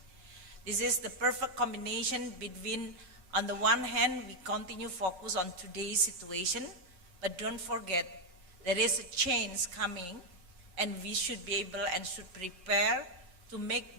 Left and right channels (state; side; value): late; left; 11 ms